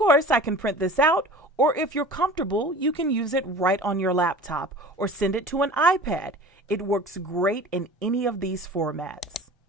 I can print this out, or if you're comfortable, you can use it right on your laptop or send it to an iPad. It works great in any of these formats.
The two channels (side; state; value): both; normal; correlation 0.40